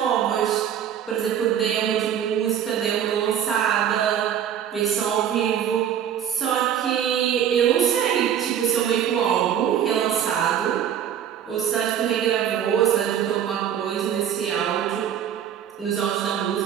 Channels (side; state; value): left; quieter; 9.4 dB